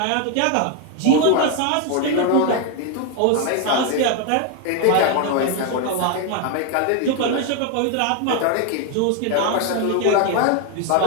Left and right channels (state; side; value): different; both; correlation 0.01